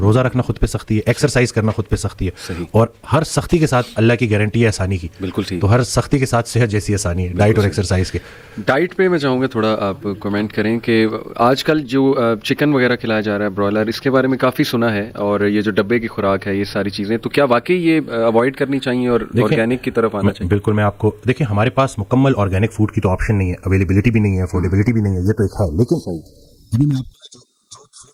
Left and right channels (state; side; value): identical; both; correlation 1.00